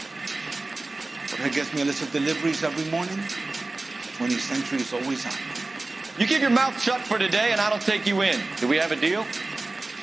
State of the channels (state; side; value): quieter; left; 3.1 dB